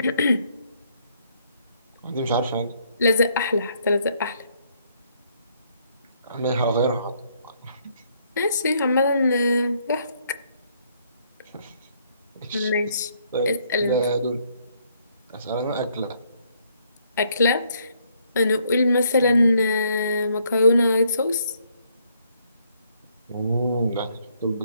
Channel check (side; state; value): both; inverted; correlation -0.69